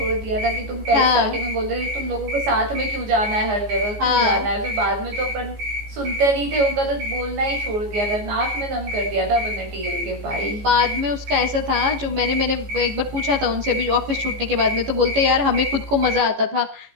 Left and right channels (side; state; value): left; late; 14 ms